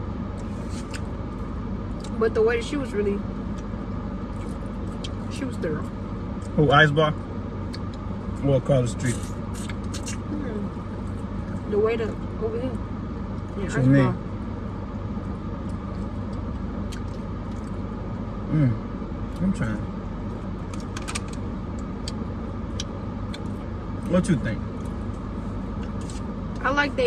But the way she was thorough. Who, Ice Bar? Or across the street? The way to over here. Yeah, Ice Bar. I'm trying. What you think? I like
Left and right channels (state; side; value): identical; both; correlation 1.00